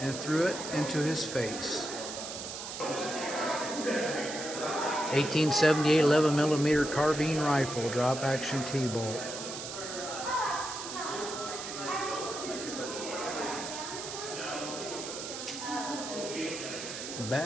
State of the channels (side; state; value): right; noise; hiss, 8 dB below the sound